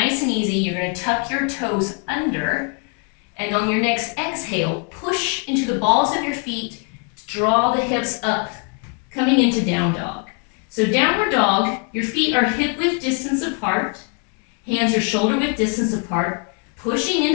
and easy. You're going to tuck your toes under, and on your next exhale, push into the balls of your feet to draw the hips up, coming into down dog. So downward dog, your feet are hip width distance apart, hands are shoulder width distance apart, pushing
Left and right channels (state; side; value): quieter; right; 38.3 dB